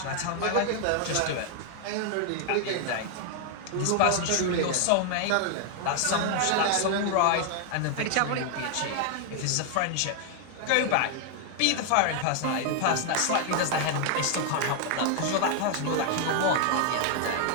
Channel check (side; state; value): both; different; correlation 0.00